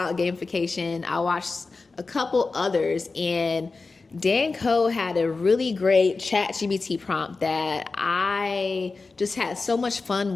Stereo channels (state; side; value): quieter; right; 4.0 dB